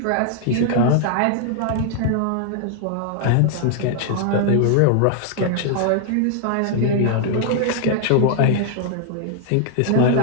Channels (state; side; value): different; both; correlation 0.00